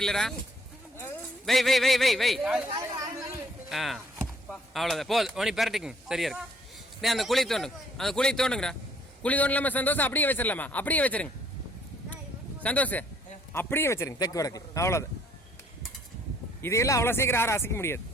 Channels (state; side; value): normal; both; correlation 0.62